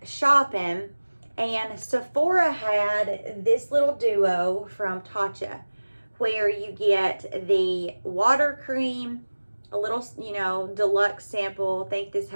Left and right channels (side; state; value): both; inverted; correlation -1.00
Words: shopping, and Sephora had this little duo from Tatcha, where you get the water cream, a little, deluxe sample. I think this